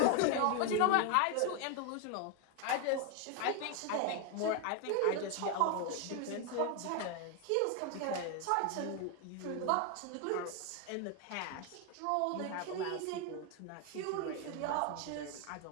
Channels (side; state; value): both; different; correlation 0.01